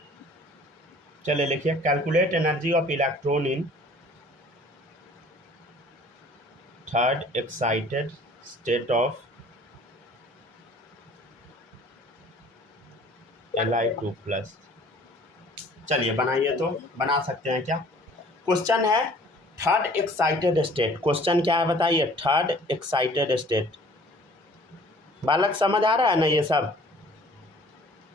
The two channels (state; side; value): normal; both; correlation 0.52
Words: चलिए लिखिए, calculate energy of electron in third excited state of Li2+। चलिए बनाइए, तो बना सकते हैं क्या। क्वेश्चन है थर्ड एक्साइटेड स्टेट। क्वेश्चन क्या है बताइए, थर्ड एक्साइटेड स्टेट। बालक समझ आ रहा है ना ये सब?